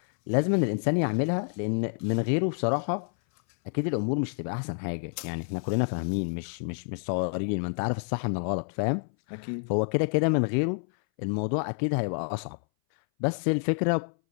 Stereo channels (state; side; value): silent; right; 59 dB below the other